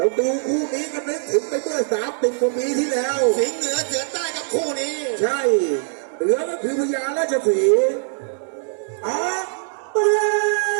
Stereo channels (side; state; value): left; silent; 64 dB below the other